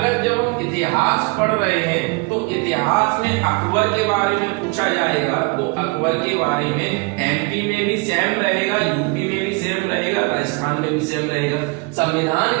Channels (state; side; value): quieter; left; 28.1 dB